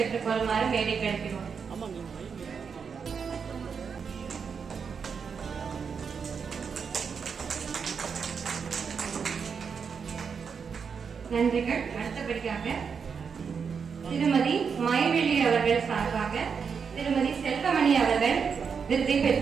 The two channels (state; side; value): quieter; left; 6.2 dB